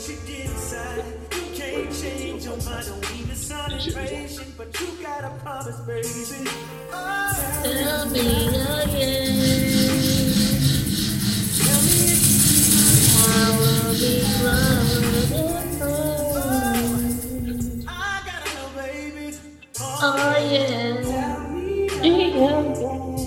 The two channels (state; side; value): identical; both; correlation 1.00